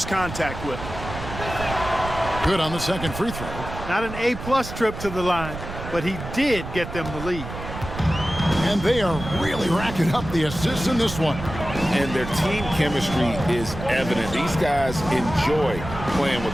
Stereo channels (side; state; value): right; noise; rumble, 9 dB below the sound